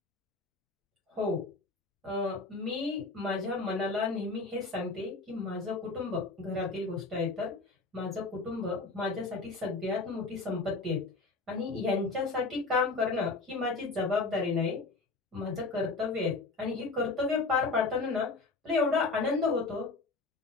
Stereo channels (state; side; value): quieter; right; 3.7 dB